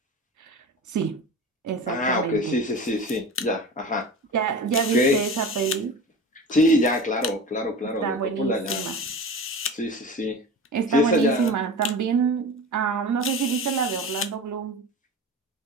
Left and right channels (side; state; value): both; normal; correlation 0.33